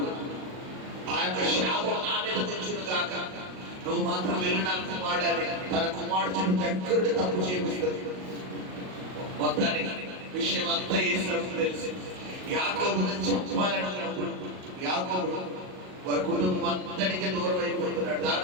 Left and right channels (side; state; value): left; late; 38 ms